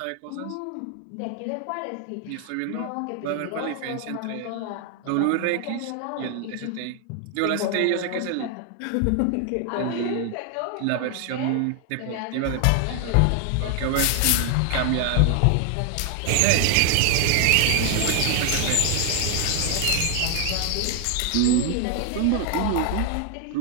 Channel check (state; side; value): different; both; correlation 0.00